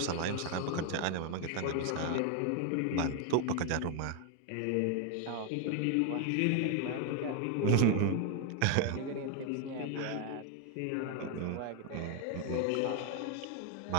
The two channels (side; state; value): both; different; correlation 0.01